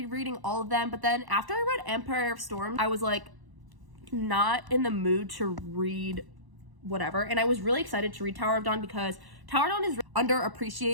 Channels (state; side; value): late; left; 1.0 ms